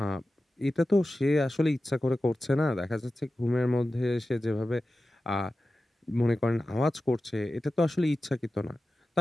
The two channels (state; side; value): normal; both; correlation 0.94